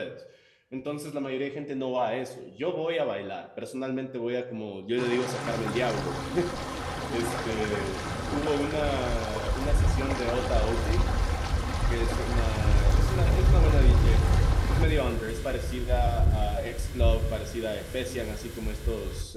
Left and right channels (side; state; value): both; identical; correlation 1.00